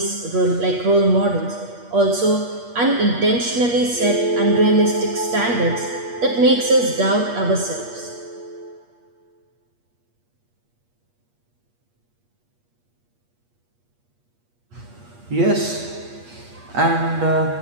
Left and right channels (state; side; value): late; left; 8.4 ms